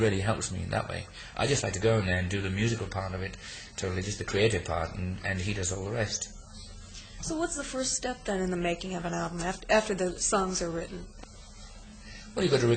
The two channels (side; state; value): both; identical; correlation 1.00